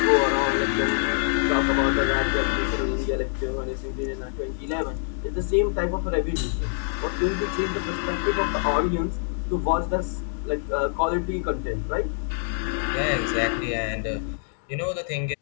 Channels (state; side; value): silent; right; digital silence